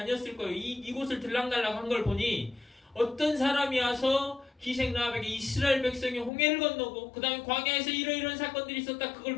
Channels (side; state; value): right; drops out; at 6.3 s